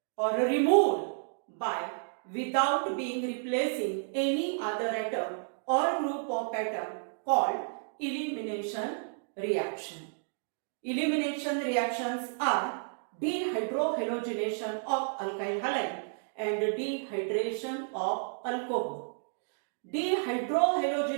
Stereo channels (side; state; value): left; silent; digital silence